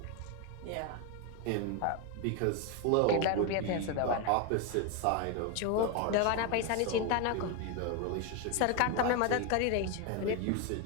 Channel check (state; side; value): different; both; correlation 0.02